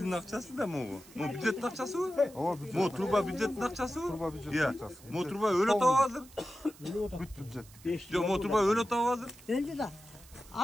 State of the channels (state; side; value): noise; right; hiss, 22 dB below the sound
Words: акчасы да могу. Могу бюджеттин акчасыбы? Ооба, бюджет. Могу труба бюджеттин акчасыбы? Труба бюджеттин акчасы. Могу труба өлө табып азыр? Бүт бюджет. Жо, могу труба өлө табып азыр? Өлдү да.